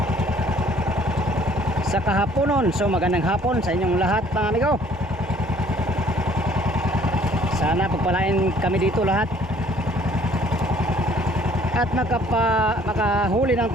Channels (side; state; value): both; normal; correlation 0.58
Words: Sa kahaponon. So magandang hapon sa inyong lahat mga amigo. Sana pagpalain kami dito lahat at makahuli ng